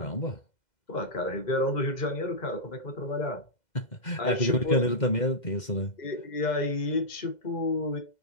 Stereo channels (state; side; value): late; right; 2.0 ms